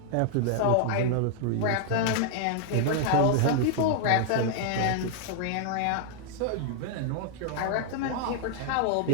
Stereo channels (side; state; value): both; different; correlation 0.00